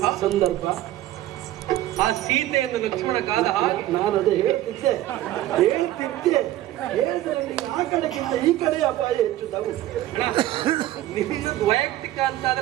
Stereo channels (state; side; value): quieter; left; 14.4 dB